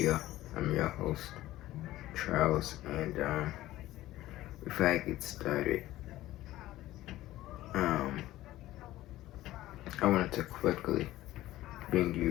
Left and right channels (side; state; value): right; quieter; 15.7 dB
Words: I'm your host, Charles, and before I get started, I wanted to quickly bring